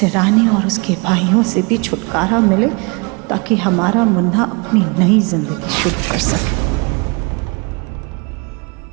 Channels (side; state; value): left; quieter; 30.4 dB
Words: रानी और उसके भाइयों से भी छुटकारा मिले, ताकि हमारा मुन्ना अपनी नई जिंदगी शुरू कर सके।